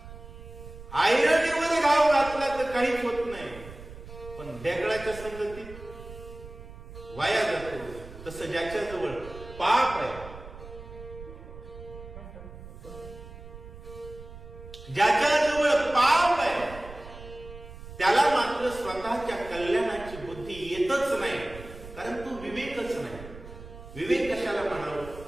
आयरनीमध्ये घाव घातला तर काहीच होत नाही पण दगडाच्या संगतीत वाया जातो. तसं ज्याच्याजवळ पाप आहे, ज्याच्याजवळ पाप आहे त्याला मात्र स्वतःच्या कल्याणाची बुद्धी येतच नाही कारण तो विवेकच नाही. विवेक कशाला म्हणावं?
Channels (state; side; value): noise; right; rumble, 15 dB below the sound